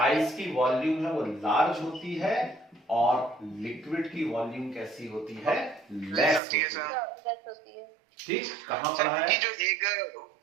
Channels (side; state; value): left; drops out; at 6.4 s